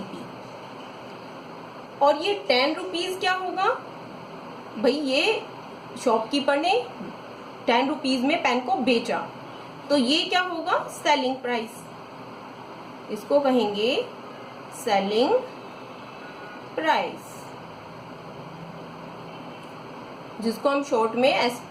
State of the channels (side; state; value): both; identical; correlation 1.00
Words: और ये 10 रुपीज क्या होगा? भाई ये शॉपकीपर ने 10 रुपीज में पेन को बेचा, तो ये क्या होगा? सेलिंग प्राइस, इसको कहेंगे सेलिंग प्राइस, जिसको हम शॉर्ट में